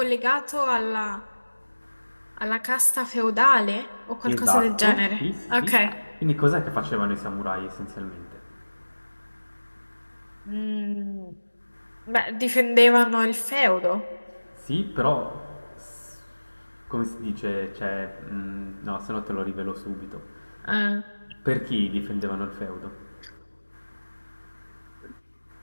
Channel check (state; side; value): inverted; both; correlation -1.00